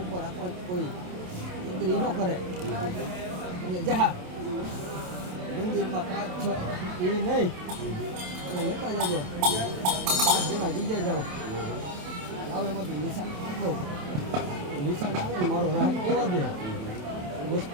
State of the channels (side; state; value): left; late; 28 ms